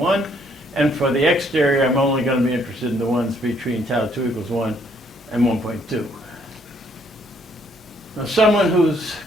and for the exterior I'm only going to be interested in the ones between tau 2 equals 1 and 1.2. Now someone who's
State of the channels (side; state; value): both; normal; correlation 0.67